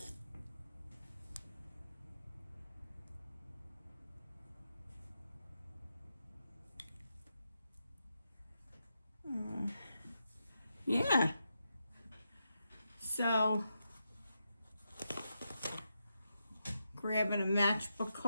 Yeah. So, grabbing a matchbook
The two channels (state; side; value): inverted; both; correlation -0.86